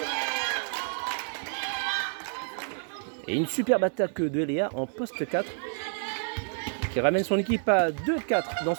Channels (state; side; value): silent; left; 59 dB below the other